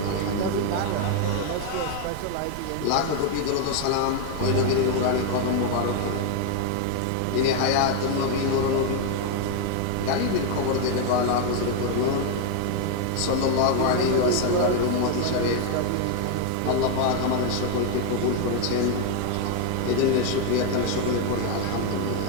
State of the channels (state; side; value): different; both; correlation 0.01